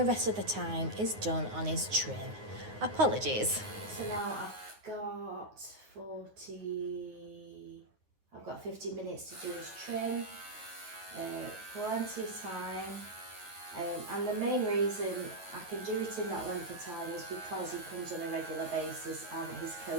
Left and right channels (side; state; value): left; late; 9.5 ms